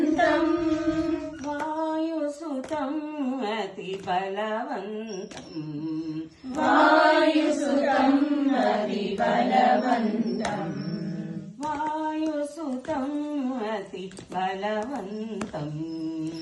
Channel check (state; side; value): identical; both; correlation 1.00